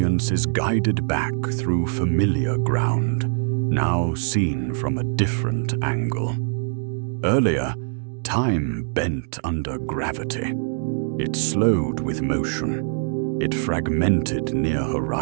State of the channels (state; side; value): silent; left; digital silence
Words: is guided back through familiar ground, now seen from a different angle. Earlier, time bent under gravity. It slowed with motion. It fragmented near